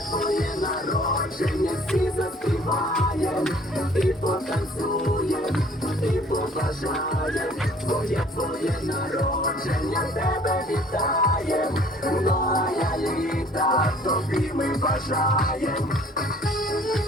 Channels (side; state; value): both; normal; correlation 0.55